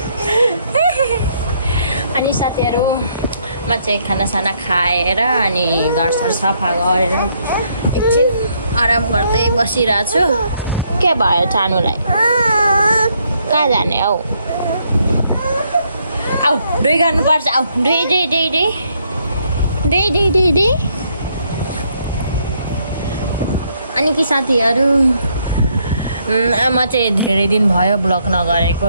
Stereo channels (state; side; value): inverted; both; correlation -0.72